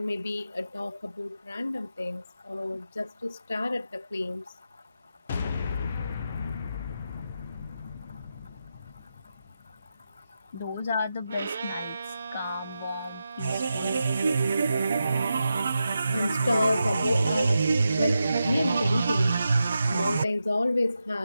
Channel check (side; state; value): both; inverted; correlation -0.88